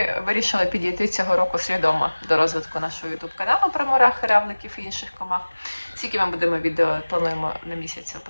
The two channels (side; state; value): both; inverted; correlation -1.00